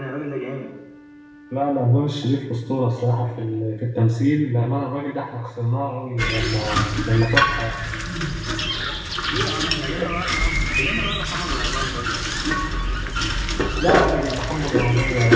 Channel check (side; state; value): both; identical; correlation 1.00